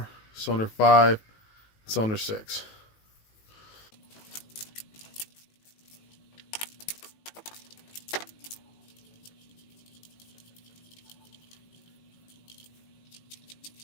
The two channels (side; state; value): right; late; 18 ms